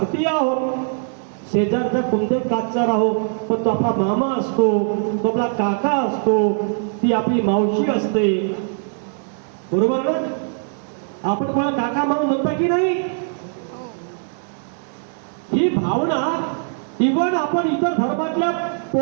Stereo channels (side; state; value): left; silent; digital silence